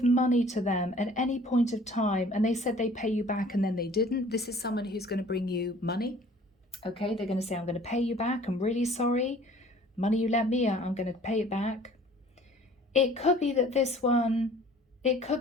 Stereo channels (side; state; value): both; normal; correlation 0.51